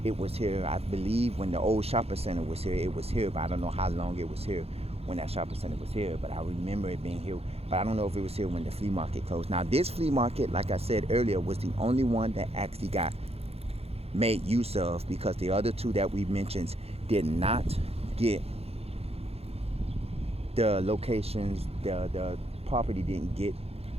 it was here. I believe when the old shopping center was here, it was here, but I don't know how long it was here when that shopping center was here. But I remember it being here, but I don't know if it was here when the flea market closed. Now, this flea market, like I said earlier, was the only one that actually got made use of, because the other 2 that we mentioned did not get the locations, the property didn't get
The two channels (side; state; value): left; late; 0.29 ms